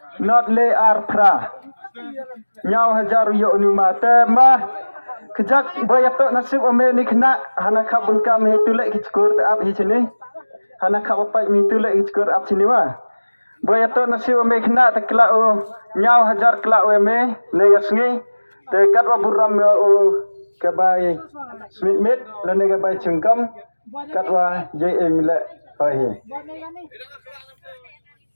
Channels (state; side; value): inverted; both; correlation -1.00